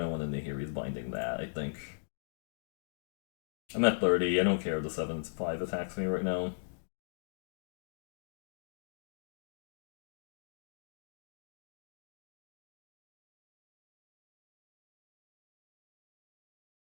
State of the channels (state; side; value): silent; right; digital silence